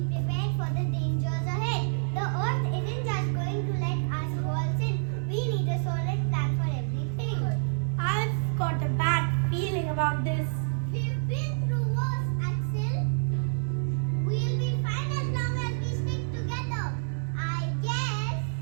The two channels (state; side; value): silent; left; digital silence